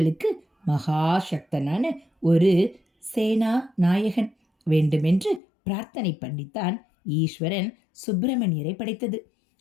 மகாசக்தனான ஒரு சேனா நாயகன் வேண்டுமென்று பிரார்த்தனை பண்ணித்தான் ஈஸ்வரன் சுப்பிரமணியரை படைத்தது.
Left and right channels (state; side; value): drops out; right; at 5.4 s